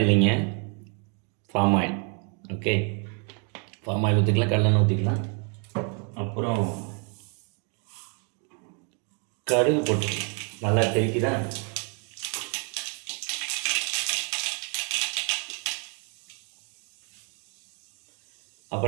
இல்லைங்க, palm oil. Okay, palm oil ஊற்றிக்கலாம், கடலெண்ணெய் ஊற்றிக்கலாம். அப்புறம் கடுகு போட்டுக்கலாம். நல்லா தெளிக்குதான்.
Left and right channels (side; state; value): left; quieter; 38.4 dB